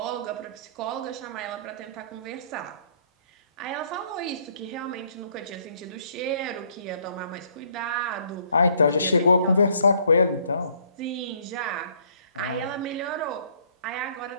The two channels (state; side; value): inverted; both; correlation -0.63